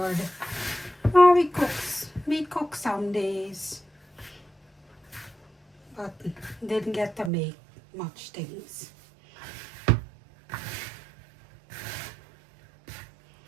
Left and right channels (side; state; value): left; drops out; at 7.3 s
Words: Oh, we cook some days. But didn't get to make much things.